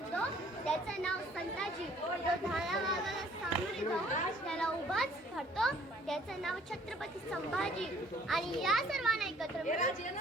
त्याचं नाव संताजी. जो धारावाला सामोरे जाऊन त्याला उभाच धरतो त्याचं नाव छत्रपती संभाजी. आणि या सर्वांना एकत्र मिळून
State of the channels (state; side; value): normal; both; correlation 0.58